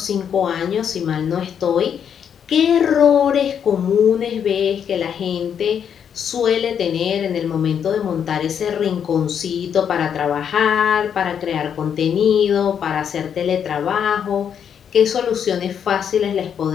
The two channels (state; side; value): quieter; right; 8.1 dB